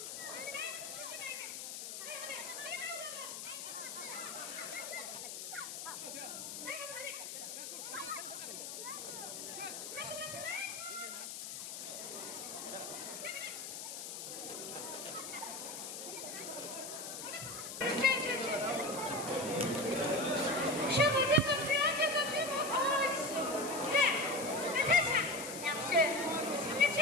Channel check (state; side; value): noise; left; hiss, 7 dB below the sound